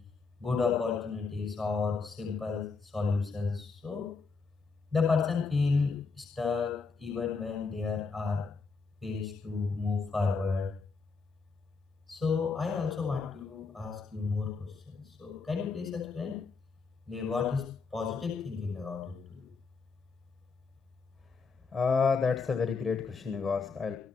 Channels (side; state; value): right; quieter; 4.7 dB